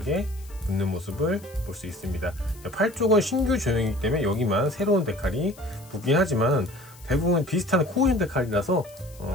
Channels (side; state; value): left; noise; hiss, 23 dB below the sound